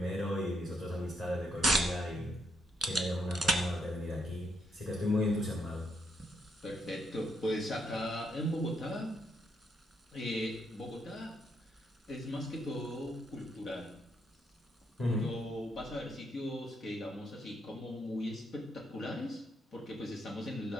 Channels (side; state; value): both; normal; correlation 0.75